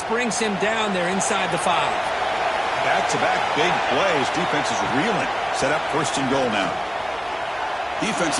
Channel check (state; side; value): identical; both; correlation 1.00